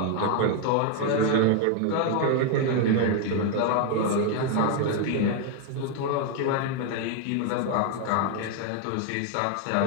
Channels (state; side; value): different; both; correlation 0.01